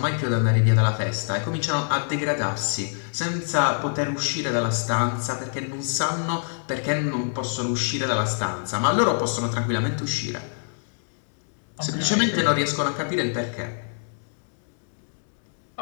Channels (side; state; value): right; silent; digital silence